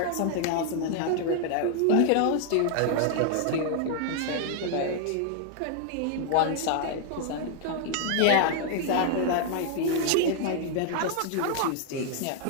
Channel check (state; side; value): different; both; correlation 0.00